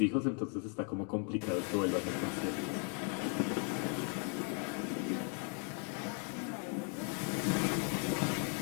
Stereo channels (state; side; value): quieter; right; 39.3 dB